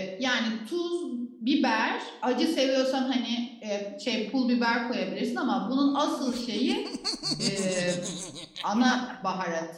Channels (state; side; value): identical; both; correlation 1.00